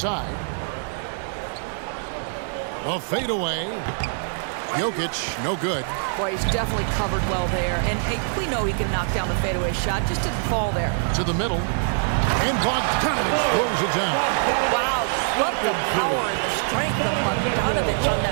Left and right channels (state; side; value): silent; left; digital silence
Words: A fadeaway. Jokic, no good. Boy, he's definitely covered well there. And we know he can knock down the fadeaway shot. Just didn't fall there. To the middle. And Bogdanovich throws it down. Wow, love the power and the strength of Bogdanovich on